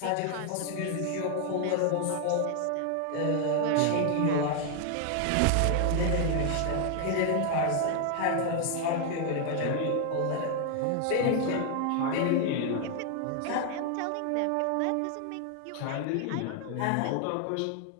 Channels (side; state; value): both; different; correlation 0.00